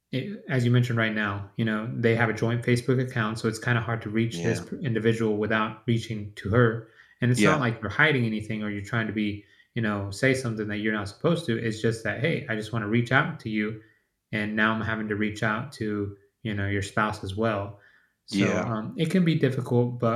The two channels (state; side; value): identical; both; correlation 1.00